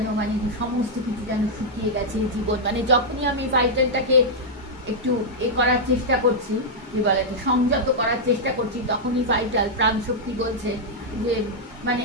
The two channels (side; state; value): both; normal; correlation -0.05